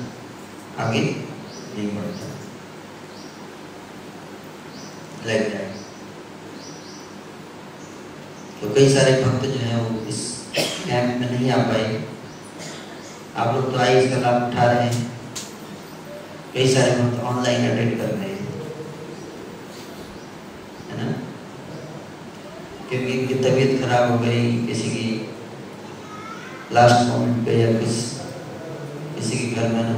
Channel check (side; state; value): both; identical; correlation 1.00